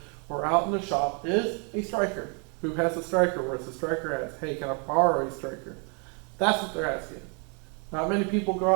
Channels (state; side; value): quieter; left; 36.7 dB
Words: or out in the shop is a striker. Who has a striker? Where's the striker at? Hey, can I borrow a striker? That's what they're asking. Not many people go